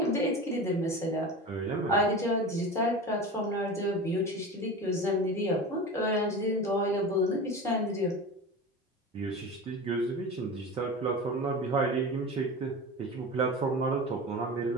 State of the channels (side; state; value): both; normal; correlation 0.30